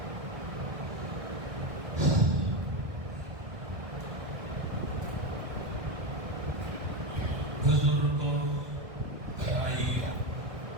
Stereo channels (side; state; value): left; late; 1.6 ms